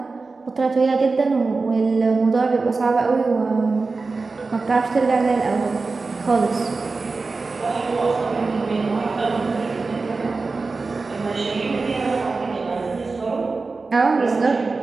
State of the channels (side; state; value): left; quieter; 4.0 dB